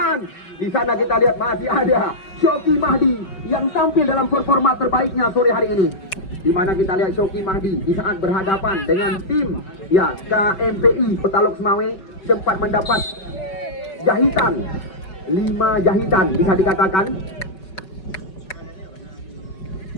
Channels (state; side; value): late; right; 5.3 ms